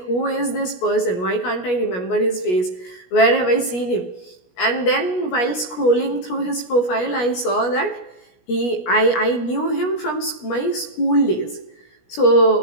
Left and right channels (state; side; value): late; right; 17 ms